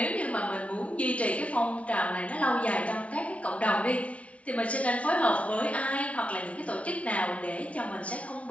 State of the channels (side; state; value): right; late; 0.064 ms